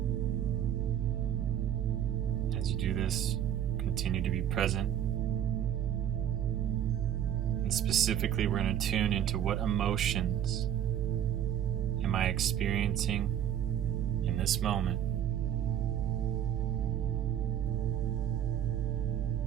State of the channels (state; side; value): quieter; left; 10.2 dB